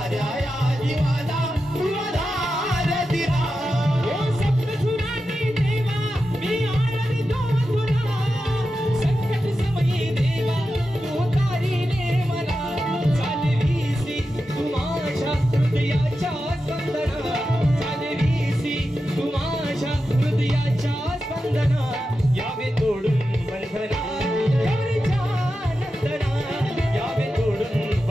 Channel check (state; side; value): normal; both; correlation 0.90